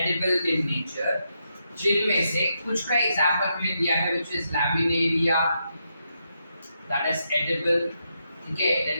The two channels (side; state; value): both; inverted; correlation -0.82